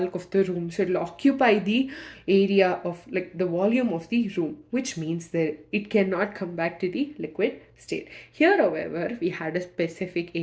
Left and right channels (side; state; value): both; identical; correlation 1.00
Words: of the room. So it will occupy the area of, like, the volume of the room, which means that it cannot come back to the liquid state. Here, however, we had a specific